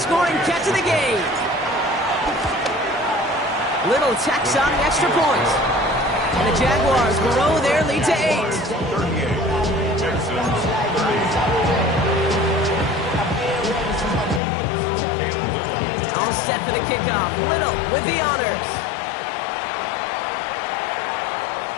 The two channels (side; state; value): right; drops out; at 14.4 s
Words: catch of the game. Little tacks on the extra point. And the Jaguars grow their lead to 8. 38. Texans 30. All set for the kickoff. Little with the honors.